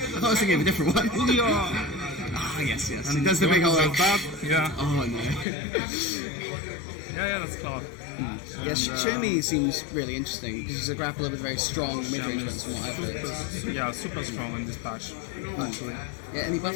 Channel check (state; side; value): drops out; right; at 5.5 s